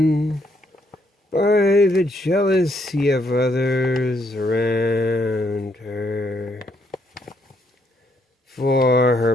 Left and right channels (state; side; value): normal; both; correlation 0.73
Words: by the jealousy of others around her. For